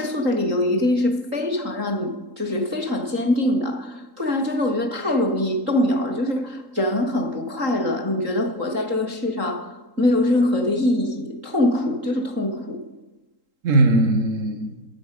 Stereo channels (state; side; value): late; left; 3.8 ms